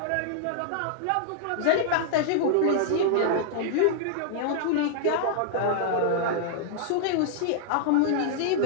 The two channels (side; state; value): both; different; correlation -0.01